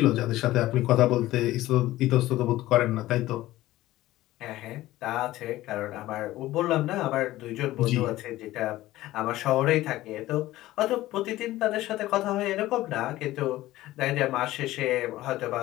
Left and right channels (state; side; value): quieter; right; 16.2 dB